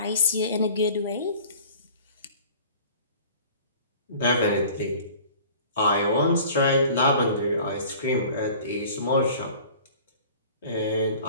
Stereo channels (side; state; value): both; inverted; correlation -0.46